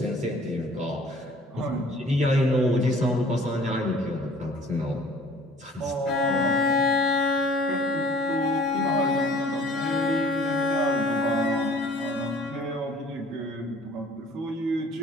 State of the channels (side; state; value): both; normal; correlation 0.51